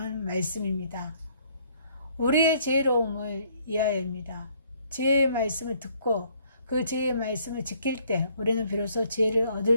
말씀입니다. 우리의 지혜로움을 이하여입니다. 지혜의 말씀을 듣고 그 지혜의 말씀을 지킬 때 우리는 비로소 지혜를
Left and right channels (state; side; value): inverted; both; correlation -0.64